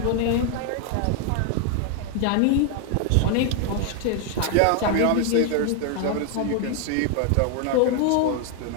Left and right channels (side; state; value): both; different; correlation 0.00